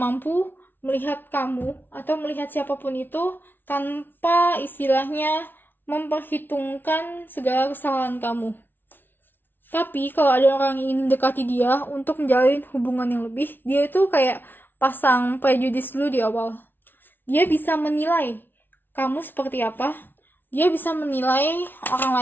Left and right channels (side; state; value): right; late; 0.097 ms